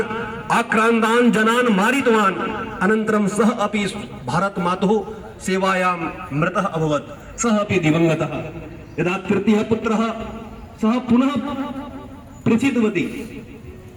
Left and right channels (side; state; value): both; identical; correlation 1.00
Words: आक्रान्तान् जनान् मारितवान्। अनन्तरं सः अपि भारत मातुः सेवायां मृतः अभवत्, सः अपि दिवंगतः। यदा तृतीयः पुत्रः सः पुनः प्रसिद्धवती,